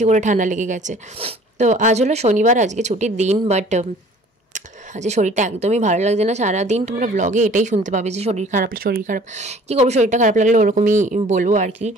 করে ঠান্ডা লেগে গেছে। তো আজ হলো শনিবার, আজকে ছুটির দিন, বাট আজকে শরীরটা একদমই ভালো লাগছে না। সারাদিন তোমরা ব্লগে এটাই শুনতে পাবে যে শরীর খারাপ। কী করবো, শরীরটা খারাপ লাগলে ওরকমই বলবো আর কি।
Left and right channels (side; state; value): both; normal; correlation 0.51